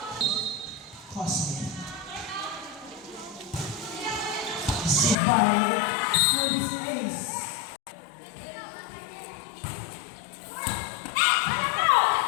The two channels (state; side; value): drops out; right; at 5.2 s